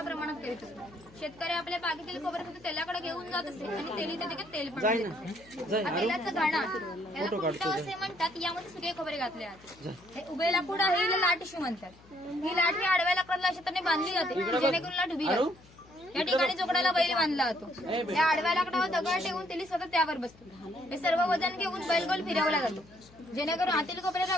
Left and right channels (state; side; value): noise; left; hum, 25 dB below the sound